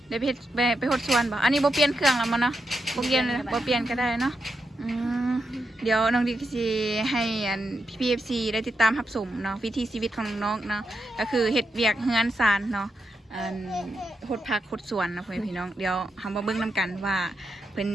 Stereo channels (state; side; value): normal; both; correlation 0.85